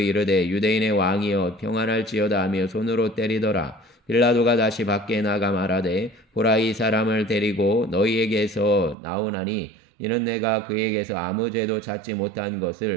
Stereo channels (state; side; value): drops out; left; at 9.0 s